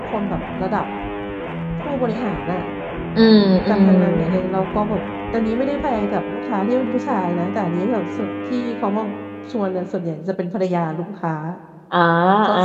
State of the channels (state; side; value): identical; both; correlation 1.00